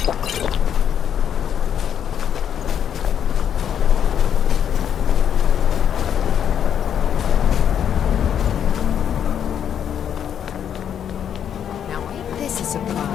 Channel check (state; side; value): quieter; right; 8.9 dB